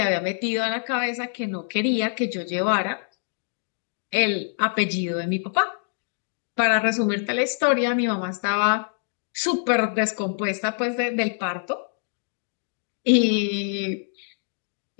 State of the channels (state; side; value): silent; right; digital silence